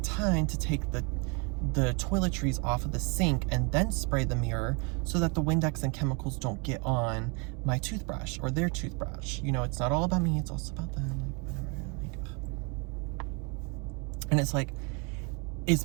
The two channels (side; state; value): left; quieter; 31.7 dB